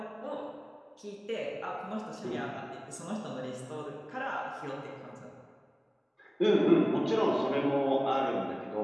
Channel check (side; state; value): both; identical; correlation 1.00